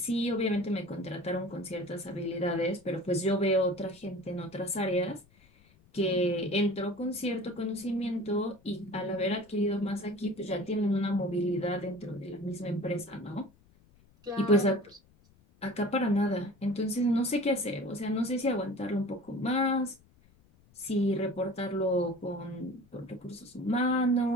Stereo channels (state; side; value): noise; left; rumble, 29 dB below the sound